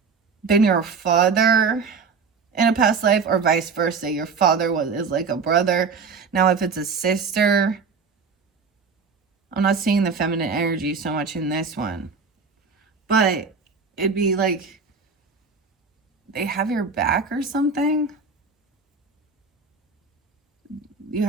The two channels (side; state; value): left; quieter; 5.1 dB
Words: been your father in a past life, or vice versa. Your father is like a brother. Now, if it's a sister, I'm not seeing the feminine energy so much in this one, but it'd be like they have your back or something. You